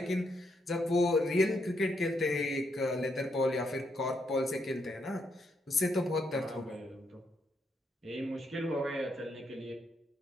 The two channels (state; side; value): normal; both; correlation 0.78